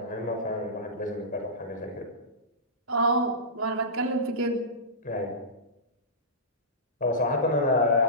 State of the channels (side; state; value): both; normal; correlation -0.20